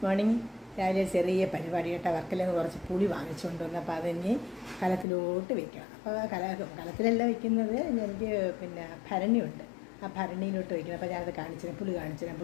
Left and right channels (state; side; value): drops out; right; at 5.1 s